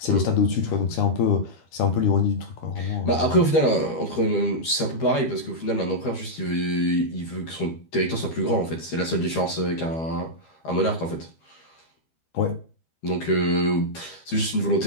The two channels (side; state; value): right; late; 13 ms